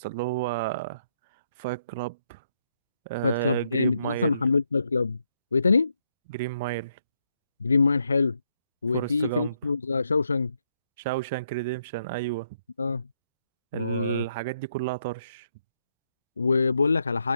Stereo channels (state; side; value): inverted; both; correlation -0.77